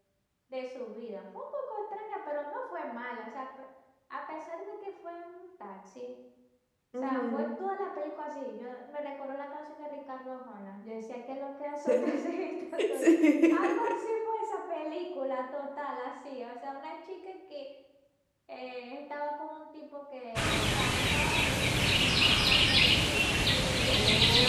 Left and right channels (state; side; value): identical; both; correlation 1.00